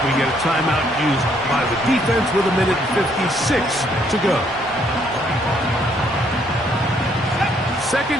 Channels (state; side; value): normal; both; correlation 0.68